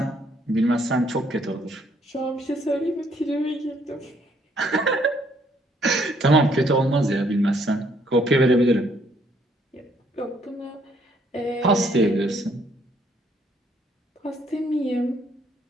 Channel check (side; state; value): both; normal; correlation 0.67